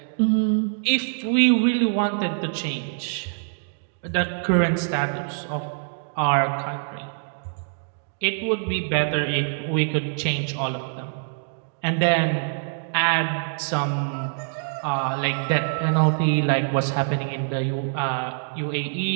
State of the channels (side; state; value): left; silent; digital silence